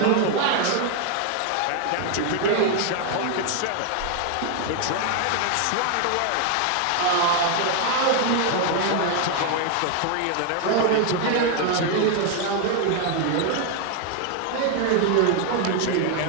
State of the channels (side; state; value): both; different; correlation 0.00